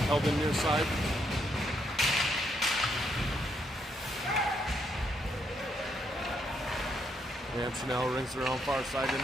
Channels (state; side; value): normal; both; correlation 0.76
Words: held in near side. Antonell rings around far side,